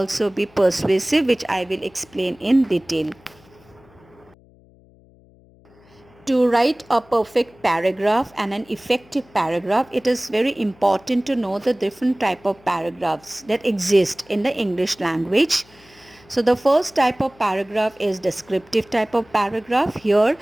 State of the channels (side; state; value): left; noise; hum, 28 dB below the sound